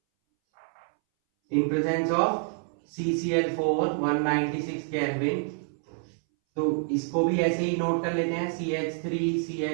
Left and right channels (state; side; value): silent; left; 60 dB below the other